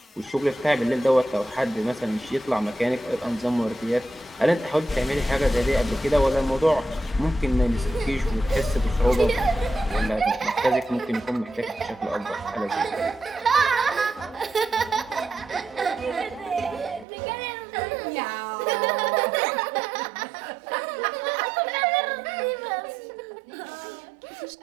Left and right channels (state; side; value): drops out; left; at 17.1 s